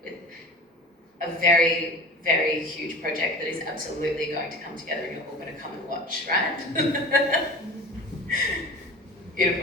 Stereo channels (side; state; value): both; normal; correlation 0.37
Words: with a very, very huge project that is absolutely going to come together and you're all going to come and watch, right?